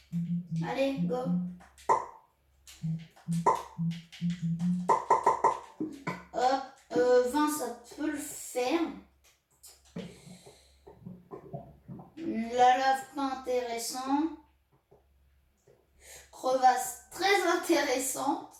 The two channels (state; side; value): identical; both; correlation 1.00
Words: Allez, go. Hop, 20, ça peut le faire. La lave, pas intéressant. Crevasse, très intéressante.